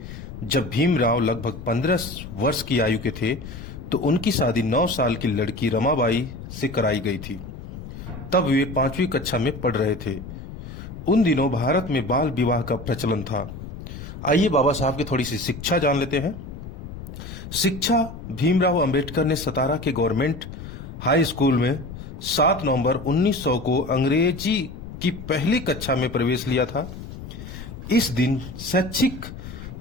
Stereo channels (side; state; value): left; noise; rumble, 11 dB below the sound